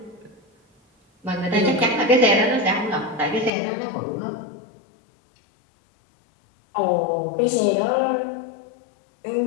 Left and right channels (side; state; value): right; drops out; at 3.5 s